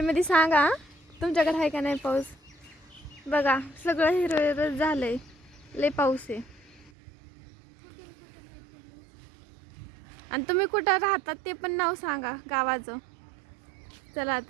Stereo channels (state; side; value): drops out; left; at 6.9 s